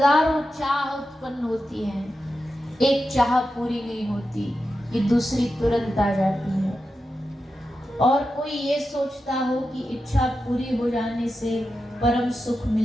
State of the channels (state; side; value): normal; both; correlation 0.90